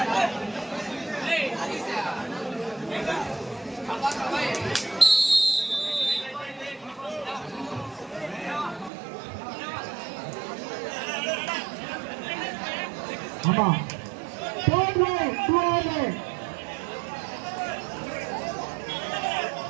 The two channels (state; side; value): drops out; left; at 8.9 s